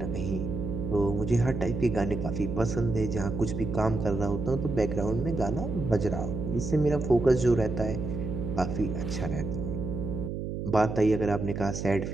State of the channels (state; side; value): noise; right; hum, 5 dB below the sound